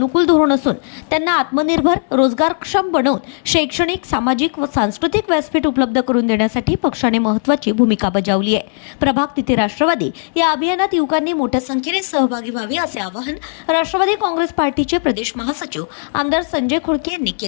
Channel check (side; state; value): right; silent; digital silence